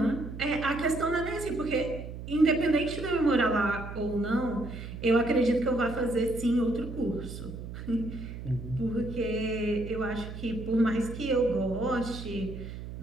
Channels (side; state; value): right; noise; hum, 10 dB below the sound